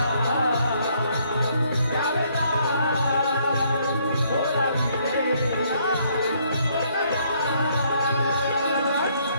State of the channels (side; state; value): both; inverted; correlation -0.68